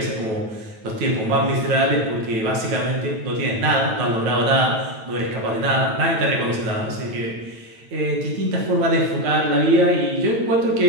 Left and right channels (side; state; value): left; late; 9.1 ms